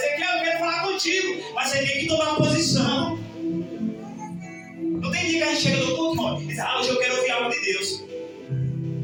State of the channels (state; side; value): identical; both; correlation 1.00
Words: eu quero falar contigo, mas você tem que tomar uma posição. Não tem dia que a gente chega no culto, irmão, e diz, hoje eu quero ouvir algo de Deus.